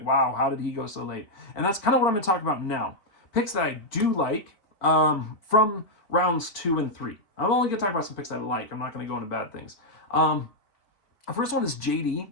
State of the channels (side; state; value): right; late; 4.3 ms